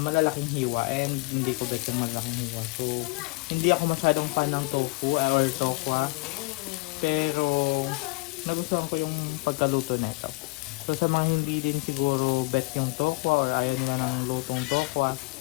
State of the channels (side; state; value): right; quieter; 26.1 dB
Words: hiwa and hindi ko bet yung malaking hiwa. So, hindi ako masyadong fan ng tofu or tokwa. Pero, nagustuhan ko yung pagkaluto nito. So, sa mga hindi din siguro bet yung tokwa or ayaw na ng lutong tokwa,